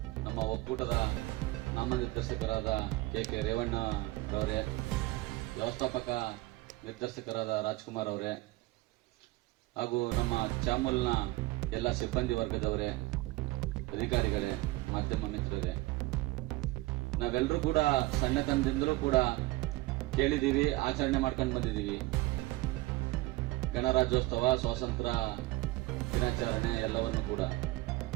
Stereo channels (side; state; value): left; quieter; 20.2 dB